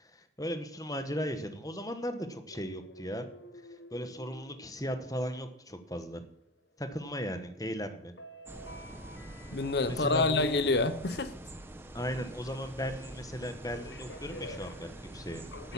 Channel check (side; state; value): both; normal; correlation 0.28